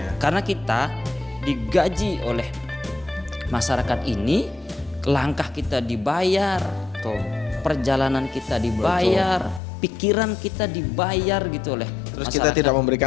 Karena kita digaji oleh masyarakat ini, langkah kita dibayar, perjalanan kita dibayar, pikiran kita dibayar gitu oleh Terus masyarakat. kita tidak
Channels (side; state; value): right; drops out; at 9.6 s